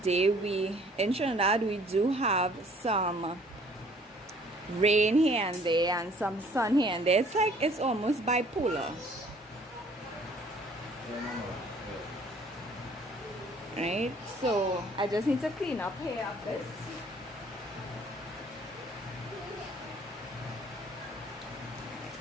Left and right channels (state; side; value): normal; both; correlation 0.57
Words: in Trinidad we do have some rain here and there and some sun here and there. It's like it's almost bipolar. Right, so I just need to clean up here a bit.